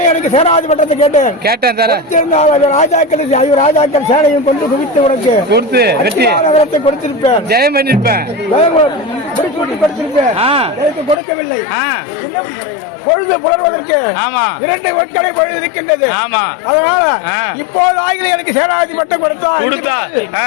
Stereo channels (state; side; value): drops out; right; at 11.2 s